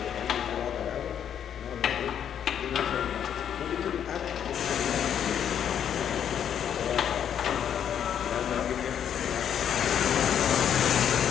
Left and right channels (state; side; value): quieter; right; 9.0 dB